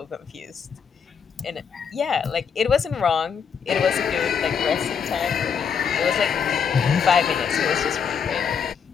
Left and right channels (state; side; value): quieter; right; 6.8 dB